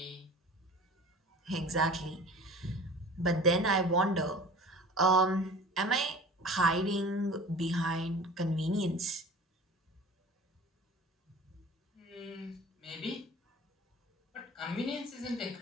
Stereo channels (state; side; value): normal; both; correlation 0.41